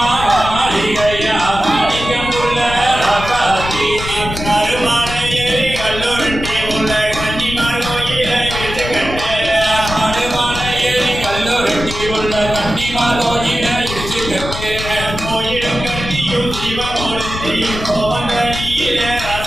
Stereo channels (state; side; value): noise; left; rumble, 8 dB below the sound